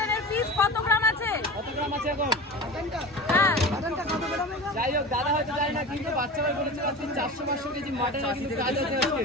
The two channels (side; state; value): both; normal; correlation 0.31